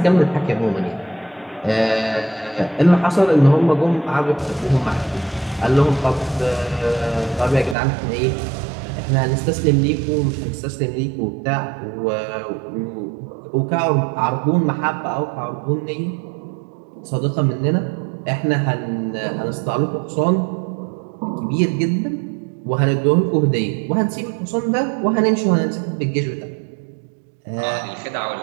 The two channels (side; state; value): left; drops out; at 7.8 s